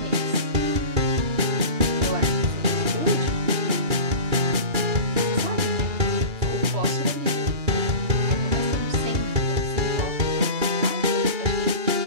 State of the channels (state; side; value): late; left; 2.9 ms